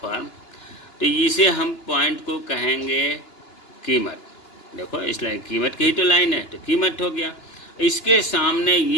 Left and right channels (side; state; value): right; late; 2.9 ms